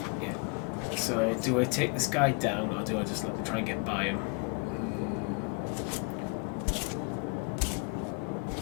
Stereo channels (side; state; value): right; quieter; 33.0 dB